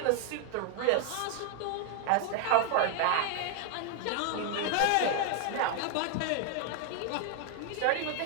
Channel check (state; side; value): different; both; correlation 0.00